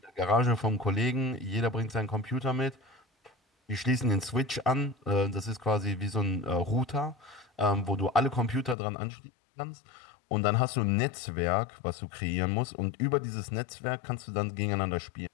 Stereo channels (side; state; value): right; drops out; at 8.8 s